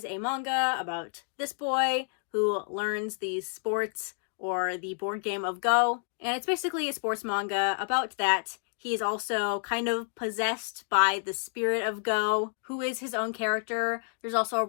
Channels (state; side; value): silent; right; 58 dB below the other